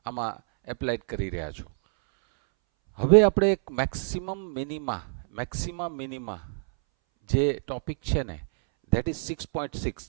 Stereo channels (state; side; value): silent; left; 60 dB below the other